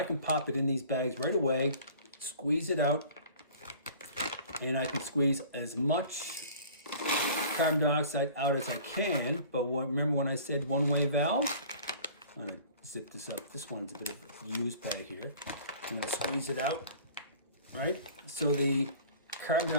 can pop it in these bags right away, squeeze it out, and I can squeeze as much carbon dioxide out as I can. But remember when I said one-way valve? I'm going to zip this up. This one's a bit of a used bag here. I'm going to squeeze it out, right? So the carbon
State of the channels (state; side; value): inverted; both; correlation -0.46